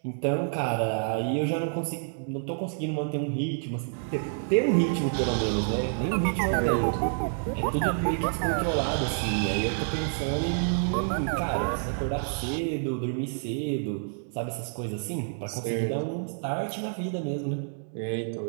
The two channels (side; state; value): left; silent; digital silence